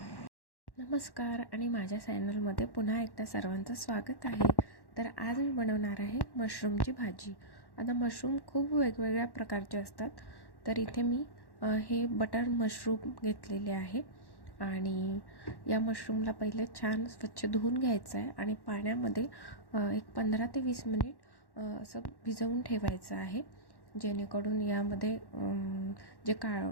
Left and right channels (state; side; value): late; right; 1.1 ms